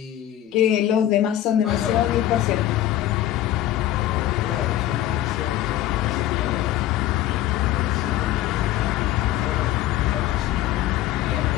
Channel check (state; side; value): quieter; right; 13.0 dB